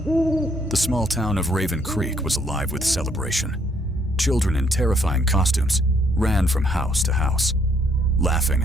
small town of Raven Creek was alive with celebration. Children in terrifying costumes ran from house to house, laughing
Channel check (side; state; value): both; normal; correlation 0.68